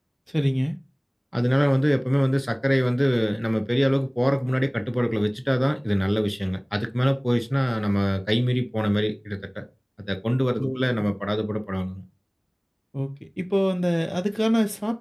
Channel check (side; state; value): both; identical; correlation 1.00